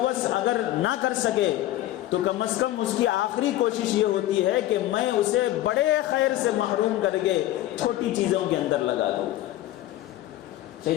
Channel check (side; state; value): right; quieter; 14.7 dB